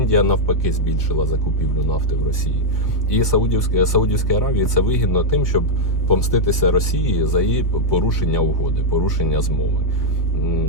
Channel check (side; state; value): right; late; 1.6 ms